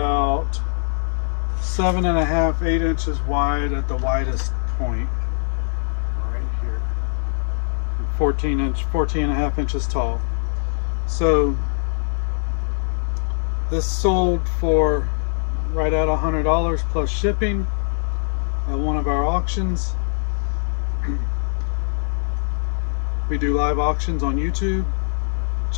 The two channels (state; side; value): silent; right; 64 dB below the other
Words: 7.5, 8 inches wide at the widest point. Right here. 14.5 inches tall. So this sold for right at $100 plus shipping at one of our auctions. We do live auctions on YouTube.